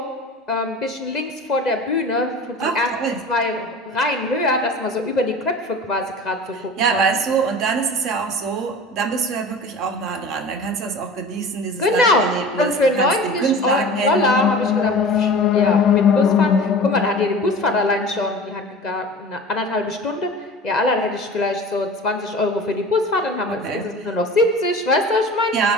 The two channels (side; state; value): both; normal; correlation 0.38